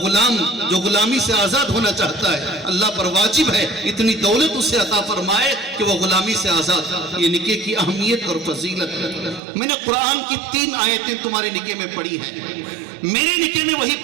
جو غلامی سے آزاد ہونا چاہتا ہے اللہ پر واجب ہے اتنی دولت اسے عطا فرمائے کہ وہ غلامی سے آزاد۔ یہ نکاح کی اہمیت اور فضیلت ہے۔ میں نے قرآن کی 3 آیتیں تمہارے نکاح میں پڑھی ہیں، میرے نکاح میں وہی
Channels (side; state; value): left; drops out; at 9.4 s